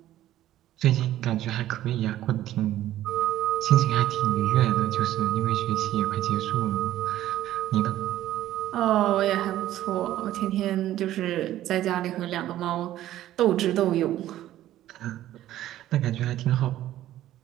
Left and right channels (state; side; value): quieter; left; 13.5 dB